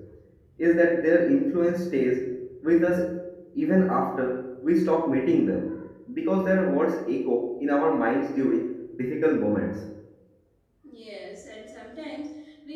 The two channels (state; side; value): identical; both; correlation 1.00